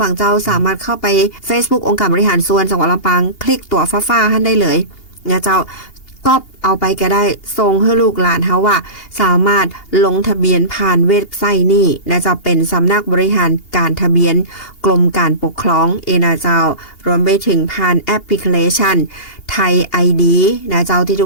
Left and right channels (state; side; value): late; right; 2.8 ms